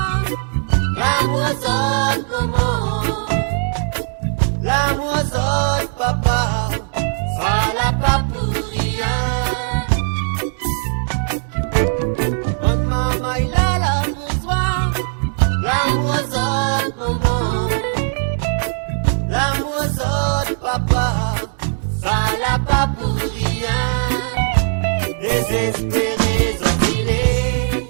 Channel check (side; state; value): left; silent; digital silence